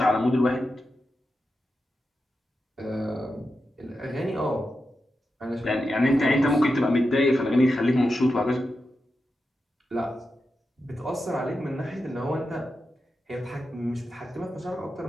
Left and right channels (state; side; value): normal; both; correlation 0.89